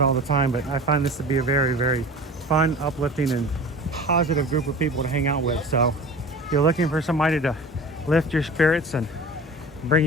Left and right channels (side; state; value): both; normal; correlation 0.38